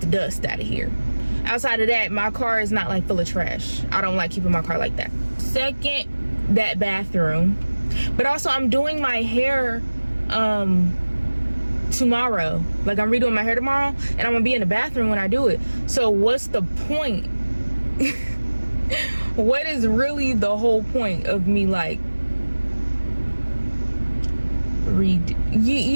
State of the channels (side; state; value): both; inverted; correlation -1.00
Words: the dust out of here. Outside of that, my car is not like full of trash. I don't like keeping my car like that. Second, that bathroom. But also, I'm doing my hair tomorrow. Like, I'm redoing my hair tomorrow, and I'm gonna be in the bathroom when I do it. So what's the point? What is really the whole point of me, like,